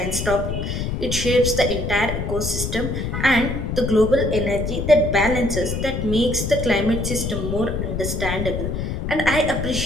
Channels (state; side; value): noise; left; rumble, 3 dB below the sound